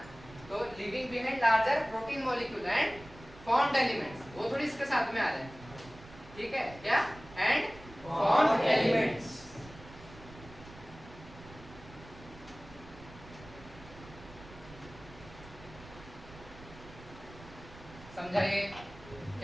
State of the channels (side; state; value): right; noise; rumble, 18 dB below the sound